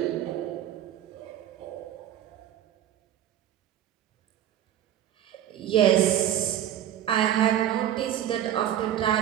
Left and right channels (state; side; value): quieter; left; 11.3 dB